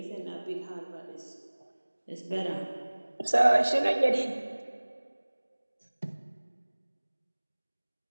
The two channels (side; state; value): both; inverted; correlation -1.00